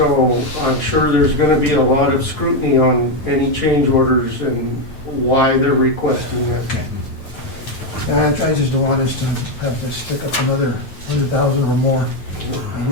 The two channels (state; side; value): late; right; 9.3 ms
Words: I'm sure there's going to be a lot of scrutiny on any change orders and why they're requesting that. And I just don't want us to have to stick up another 100,000 or more,